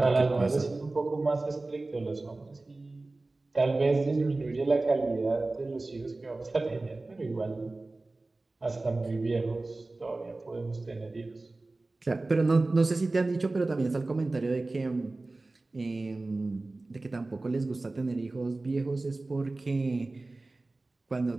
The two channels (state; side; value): quieter; left; 3.2 dB